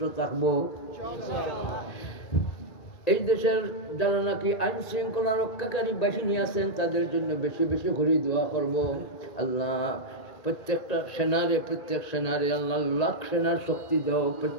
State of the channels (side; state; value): right; late; 2.4 ms